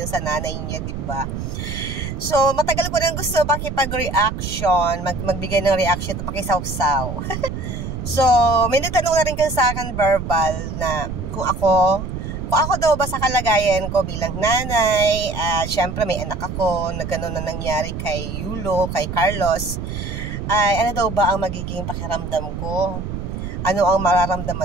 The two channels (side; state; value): right; noise; rumble, 6 dB below the sound